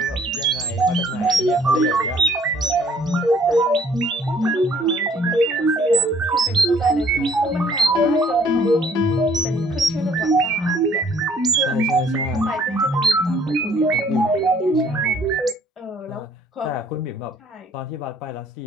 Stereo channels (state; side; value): normal; both; correlation 0.60